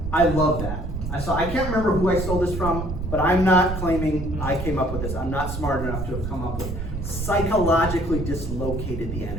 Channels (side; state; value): right; noise; rumble, 5 dB below the sound